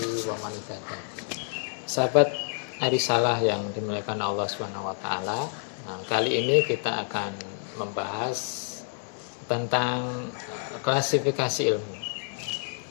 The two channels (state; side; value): silent; right; 59 dB below the other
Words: wa man ittaba'a. Sahabat Arisalah yang dimuliakan Allah Subhanahu wa taala. Nah, kali ini kita akan membahas tentang klasifikasi ilmu.